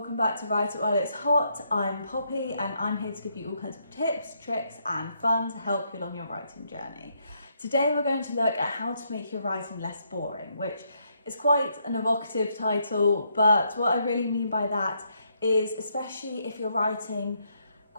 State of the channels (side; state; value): both; inverted; correlation -0.76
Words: back to Write It While It's Hot. I'm Poppy and I'm here to give you all kinds of tips, tricks and fun to help you along your writing journey. Today we're going to look at how to make your writing less boring, which is quite an evocative title, but what I really mean by that is especially if you're writing